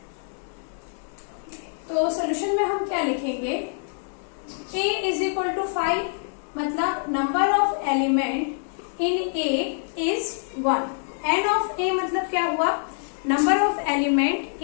तो सॉल्यूशन में हम क्या लिखेंगे, a इज इक्वल टू 5, मतलब number of element in a is 1। n of a मतलब क्या हुआ, number of element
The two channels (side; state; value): right; silent; digital silence